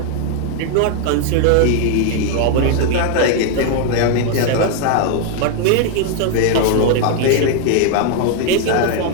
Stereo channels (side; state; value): both; different; correlation 0.00